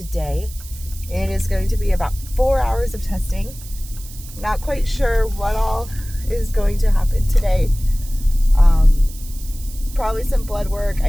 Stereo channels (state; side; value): noise; right; hiss, 17 dB below the sound